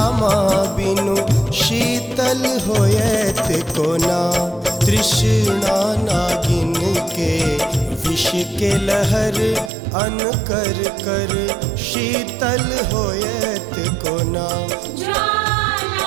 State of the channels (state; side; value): drops out; left; at 9.7 s